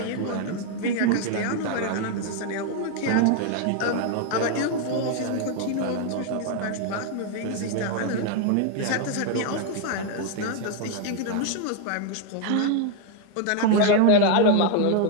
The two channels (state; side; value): different; both; correlation 0.01